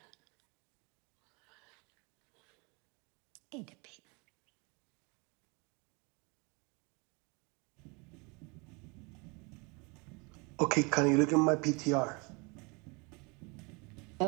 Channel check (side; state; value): left; quieter; 29.5 dB